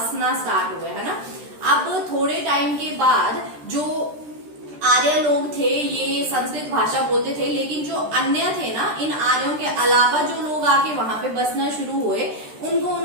स्टार्ट हुए, है ना। अब थोड़े टाइम के बाद जो आर्य लोग थे ये संस्कृत भाषा बोलते थे, लेकिन जो अन्य थे ना, इन आर्यों के अलावा जो लोग आके वहां पे बसना शुरू हुए, उनको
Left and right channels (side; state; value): left; late; 13 ms